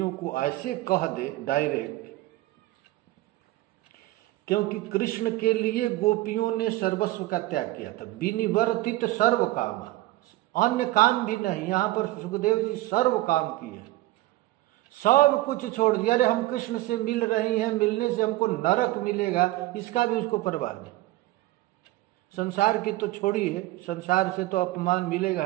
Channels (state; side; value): quieter; left; 17.6 dB